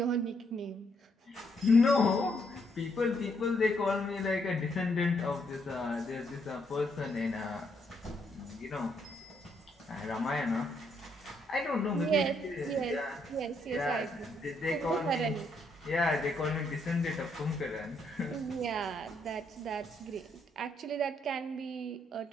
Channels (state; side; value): normal; both; correlation 0.74